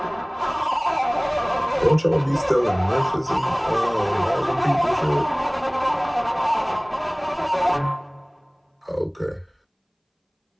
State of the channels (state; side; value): identical; both; correlation 1.00